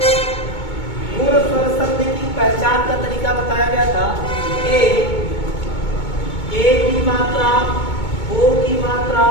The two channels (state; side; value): late; right; 2.2 ms